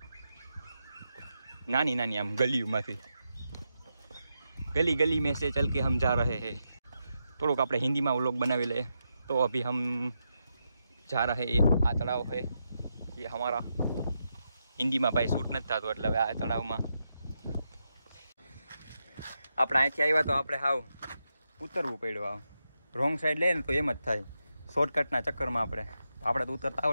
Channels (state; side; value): inverted; both; correlation -0.85